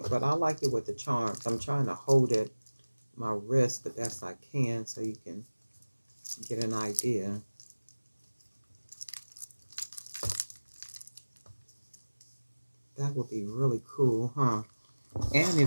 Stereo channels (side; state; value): both; inverted; correlation -1.00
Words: But I like it with the charms. I'm trying to hold it, my wrist, the best I can so you can get an idea. That would be really cool, huh? And